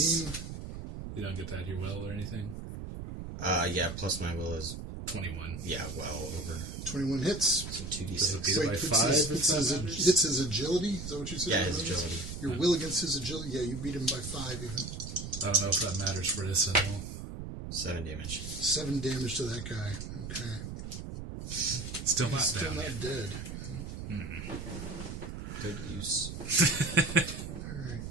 Plus, you don't get that your will or anything? Yeah, plus my will is, 21. yeah, well over. 21 hits. So Does it 2d6. beat it by 5? Hits his agility. Is that what you said? Yeah, his agility. Your will against his agility. Yeah, you beat him by 5 even. I don't know if that matters for this at all. 7 damage. 7 damage to that guy. Okay. Still not Still down not yet. dead. Good use.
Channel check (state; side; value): noise; right; rumble, 8 dB below the sound